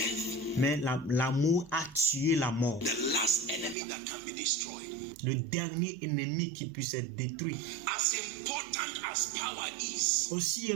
mais l'amour a tué la mort. The last enemy that can be destroyed. Le dernier ennemi qui puisse être détruit. As important as power is, Aussi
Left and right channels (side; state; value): left; drops out; at 3.8 s